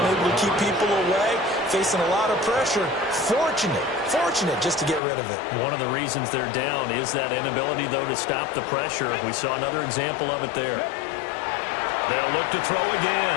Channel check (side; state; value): right; drops out; at 5.0 s